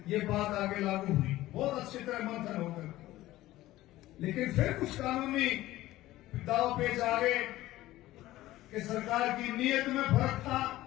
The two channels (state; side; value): quieter; right; 16.2 dB